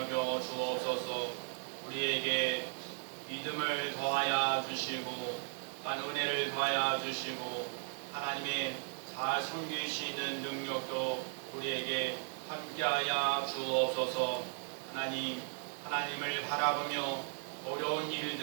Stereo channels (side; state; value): left; silent; 53 dB below the other